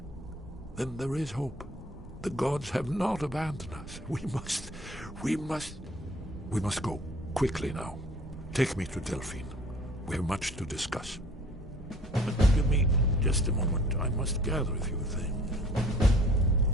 there is hope. The gods have not abandoned us. We must go quickly now. Take me to Delphine. We have much to discuss. But give me just a moment. I must gather a few things.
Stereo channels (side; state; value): both; normal; correlation 0.52